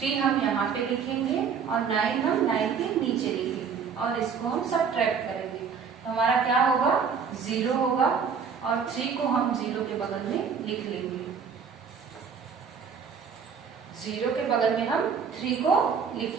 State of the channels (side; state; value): left; quieter; 6.4 dB